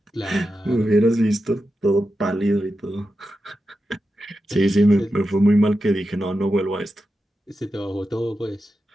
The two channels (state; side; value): normal; both; correlation 0.90